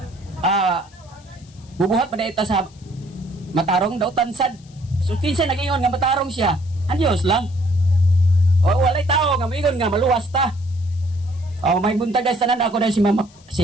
bubuhat pa ita sa matarong daw tansad. So kinsa nag-ingon nga matarong siya. Anyos lang. O walay tao nga mingon nga maluwas ta. May buntag guys tanan ako na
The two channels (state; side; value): noise; left; hiss, 28 dB below the sound